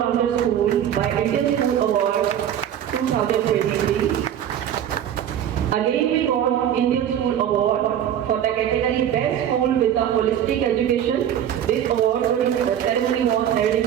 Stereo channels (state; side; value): quieter; left; 10.2 dB